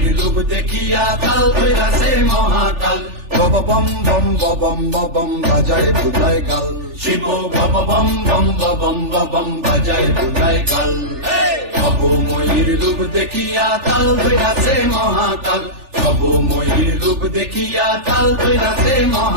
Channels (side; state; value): left; late; 3.4 ms